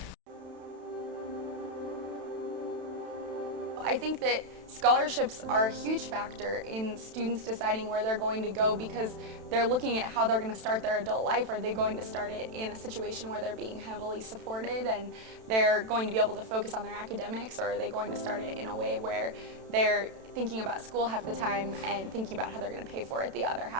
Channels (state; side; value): late; left; 32 ms